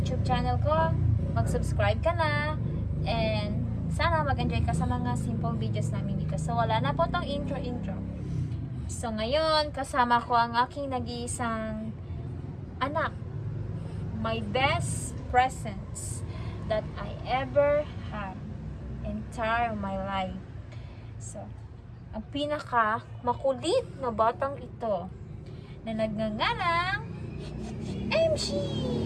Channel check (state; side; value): identical; both; correlation 1.00